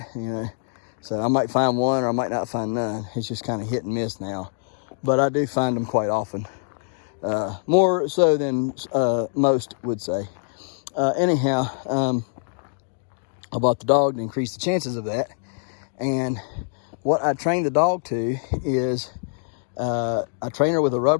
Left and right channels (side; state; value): right; silent; digital silence